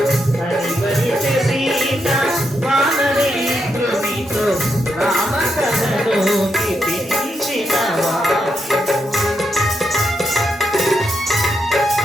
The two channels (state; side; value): normal; both; correlation 0.81